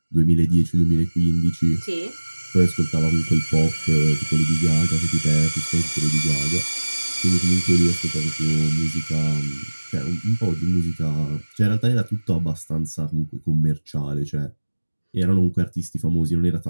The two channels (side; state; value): both; inverted; correlation -1.00